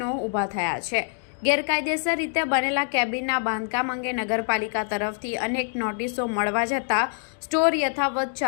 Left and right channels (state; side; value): silent; right; 62 dB below the other